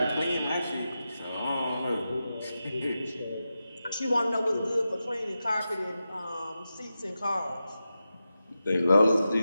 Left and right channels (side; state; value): both; inverted; correlation -0.91